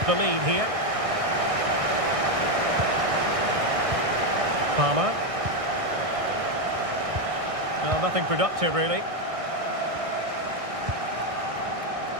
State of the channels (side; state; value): left; late; 1.6 ms